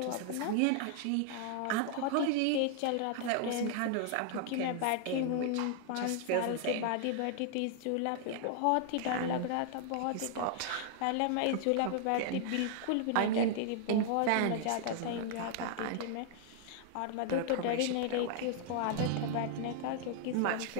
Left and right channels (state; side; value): different; both; correlation -0.01